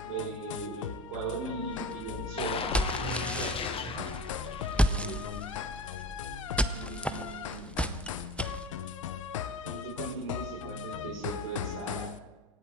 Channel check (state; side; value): normal; both; correlation 0.33